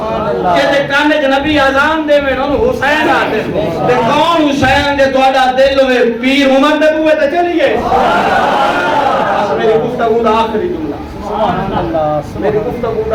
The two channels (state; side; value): identical; both; correlation 1.00